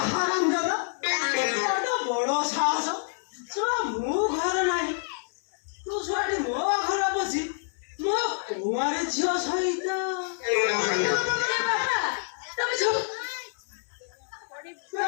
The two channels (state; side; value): silent; right; 60 dB below the other